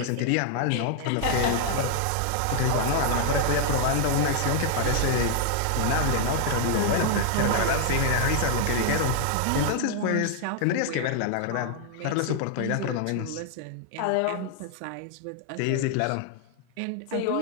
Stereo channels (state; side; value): different; both; correlation 0.00